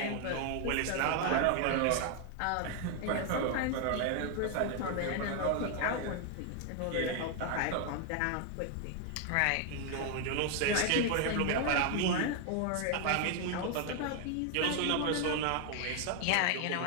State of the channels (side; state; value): both; different; correlation 0.00